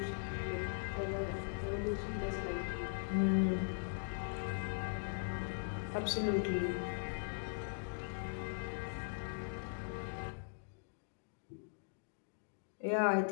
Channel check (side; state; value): right; silent; digital silence